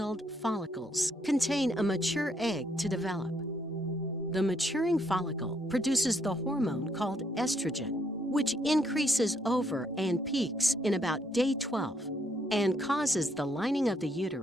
follicles contain a mature egg to develop. The maturing follicle produces the hormone called estrogen, which increases over and peaks in about day 12 and causes the lining of the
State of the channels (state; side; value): normal; both; correlation 0.72